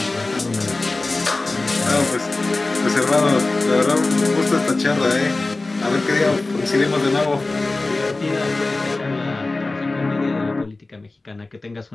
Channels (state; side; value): quieter; right; 3.2 dB